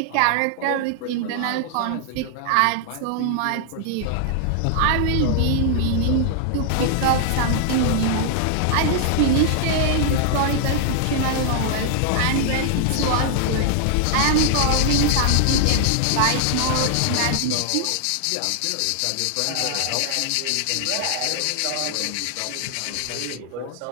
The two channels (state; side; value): different; both; correlation 0.00